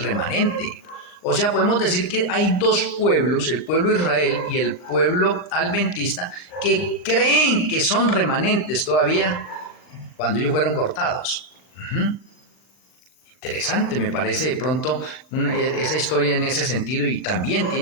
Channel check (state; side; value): late; right; 39 ms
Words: O sea, podemos decir que hay dos pueblos, el pueblo de Israel y el pueblo adventista, que creen que son remanentes todavía cuando ellos fueron cortados. Interesante, me parece de pronto esa historia en ese sentido, y también